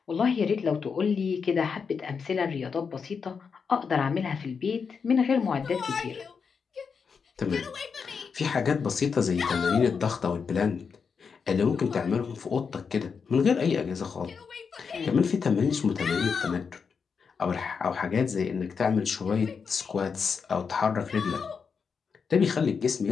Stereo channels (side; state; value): right; quieter; 5.8 dB